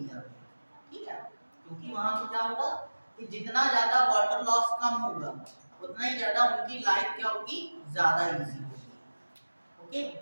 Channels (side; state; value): both; inverted; correlation -1.00